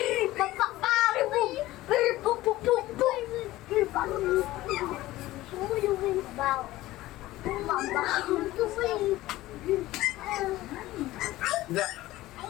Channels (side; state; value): right; quieter; 16.9 dB